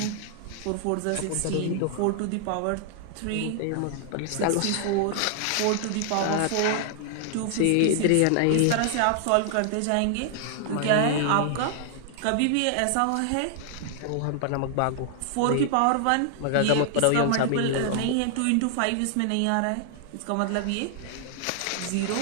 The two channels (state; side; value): different; both; correlation 0.00